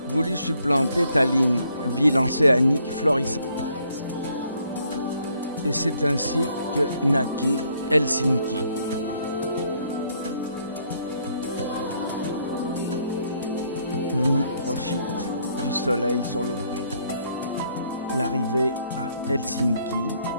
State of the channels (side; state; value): both; inverted; correlation -0.69